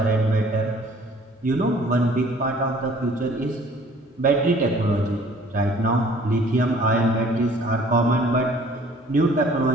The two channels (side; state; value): both; normal; correlation 0.54